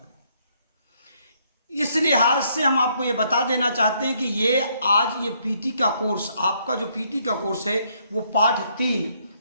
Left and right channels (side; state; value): both; inverted; correlation -0.70